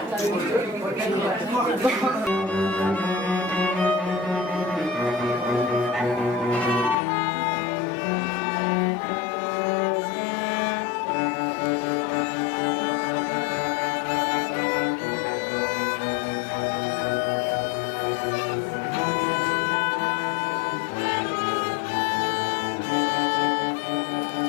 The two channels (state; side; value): drops out; right; at 7.0 s